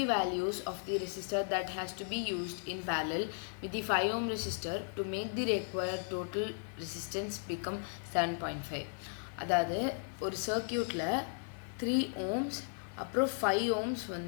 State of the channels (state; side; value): silent; right; 54 dB below the other